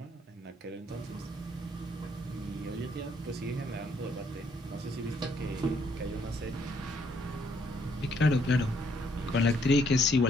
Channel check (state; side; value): normal; both; correlation 0.69